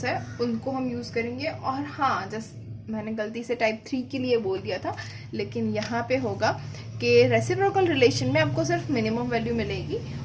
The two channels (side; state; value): both; identical; correlation 1.00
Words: है उनको हम यूज़ करेंगे। और हाँ, जैसे मैंने गलती से टाइप 3 के लिए बोल दिया था, लेकिन यहाँ पे होगा कि रेसिप्रोकल रिलेशन में आपको सिर्फ मिनिमम वैल्यू मिलेगी,